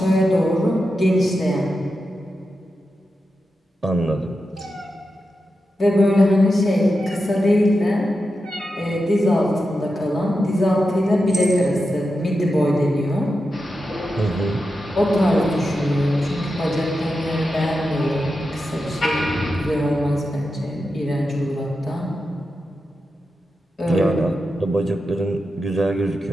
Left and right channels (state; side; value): normal; both; correlation 0.89